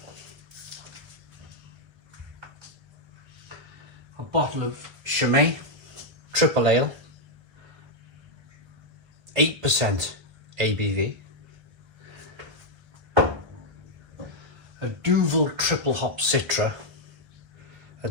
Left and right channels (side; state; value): left; late; 1.5 ms